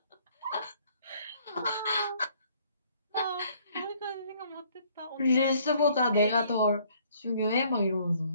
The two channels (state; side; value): inverted; both; correlation -0.62